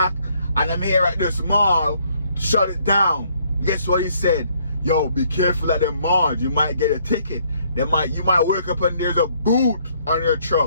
And I'm here at this mall, shut it down. Guess what he said? Yo, be careful at the mall. You might get a ticket. You might wake up and there's a boot on your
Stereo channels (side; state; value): both; inverted; correlation -0.67